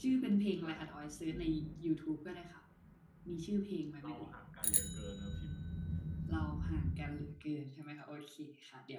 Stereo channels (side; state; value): both; identical; correlation 1.00